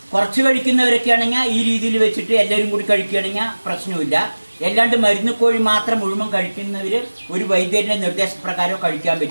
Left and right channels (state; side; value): inverted; both; correlation -1.00